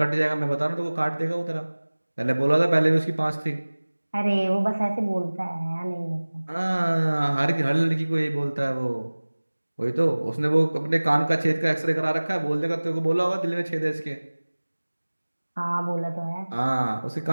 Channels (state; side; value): inverted; both; correlation -1.00